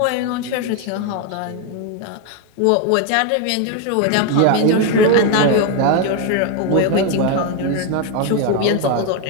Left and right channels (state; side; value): different; both; correlation 0.02